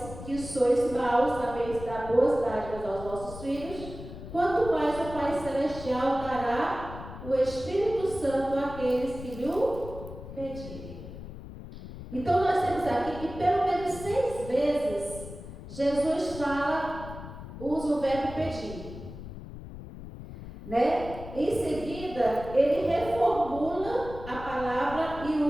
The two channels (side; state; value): left; noise; rumble, 12 dB below the sound